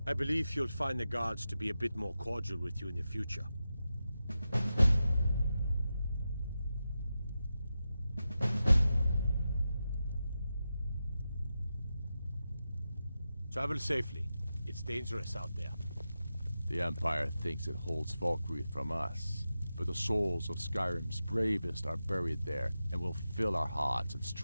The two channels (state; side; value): inverted; both; correlation -0.91